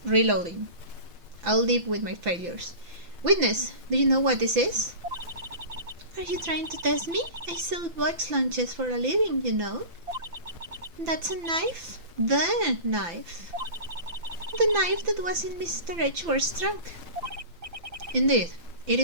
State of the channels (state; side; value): late; left; 5.9 ms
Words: reloading. I'll live with my failures. Witness, do you know what this is? Are you trying to test me? I sell box lunches for a living, you know. That's a knife? The knife. The knife that was in Mr. Edgeworth's trunk. Indeed, it